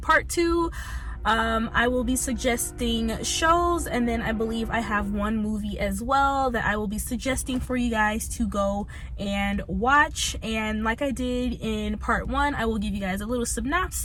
2, I will be suggesting shows, and then I believe I have one movie as well that I will be suggesting for you guys to go and watch. And like I did in part 1, I will give you guys a little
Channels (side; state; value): both; identical; correlation 1.00